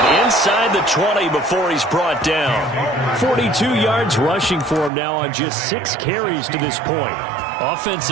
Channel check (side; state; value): left; drops out; at 4.9 s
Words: inside the 20 before he's brought down. 42 yards rushing for him now on just 6 carries to this point.